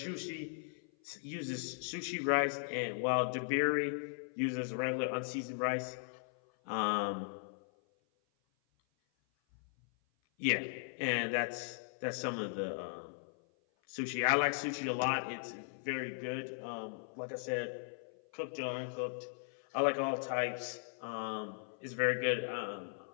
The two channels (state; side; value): silent; right; 53 dB below the other